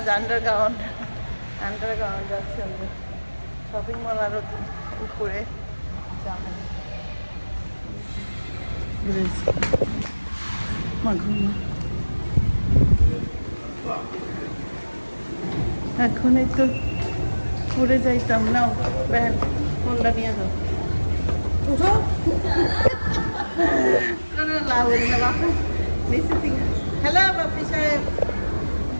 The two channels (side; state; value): both; inverted; correlation -1.00